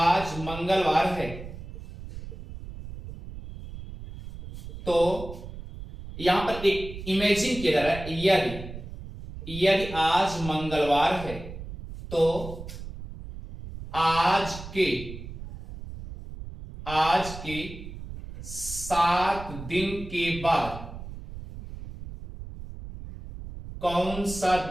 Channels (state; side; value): noise; right; rumble, 11 dB below the sound